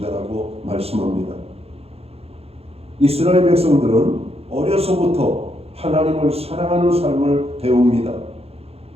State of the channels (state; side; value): late; left; 0.29 ms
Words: 말씀합니다. 이스라엘 백성들은 어려서부터 하나님을 사랑하는 삶을 배웁니다.